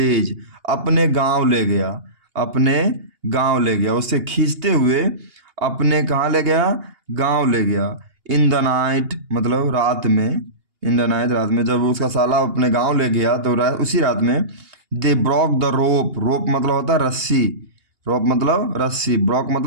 अपने गांव ले गया, अपने गांव ले गया, उससे खींचते हुए अपने कहाँ ले गया? गांव ले गया। इन द नाइट मतलब रात में, इन द नाइट रात में, जब उसका साला अपने गांव ले गया तो उसी रात में दे ब्रॉक द रोप। रोप मतलब होता है रस्सी, रोप मतलब रस्सी, ब्रॉक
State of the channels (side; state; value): left; late; 2.8 ms